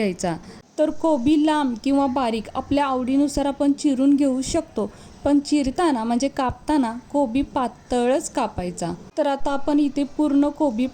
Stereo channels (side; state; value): both; identical; correlation 1.00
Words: तर कोबी लांब किंवा बारीक आपल्या आवडीनुसार आपण चिरून घेऊ शकतो, पण चिरताना म्हणजे कापताना कोबी पातळच कापायचा। तर आता आपण इथे पूर्ण कोबी